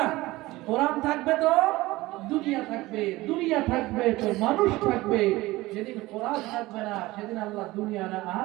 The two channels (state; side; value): quieter; left; 19.2 dB